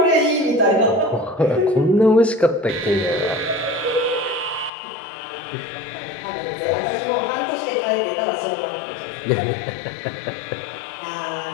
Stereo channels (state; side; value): drops out; right; at 4.7 s